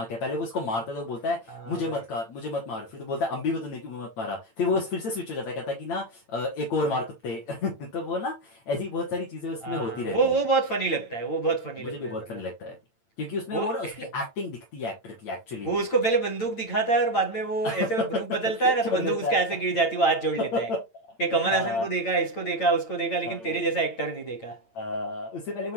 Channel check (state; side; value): late; right; 8.9 ms